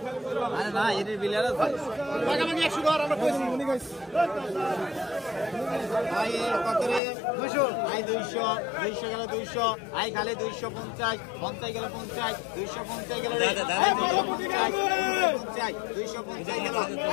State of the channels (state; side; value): drops out; right; at 7.0 s